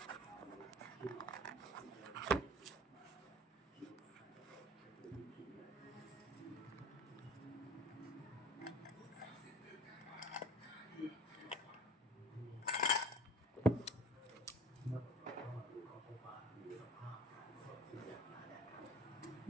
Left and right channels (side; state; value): both; normal; correlation 0.44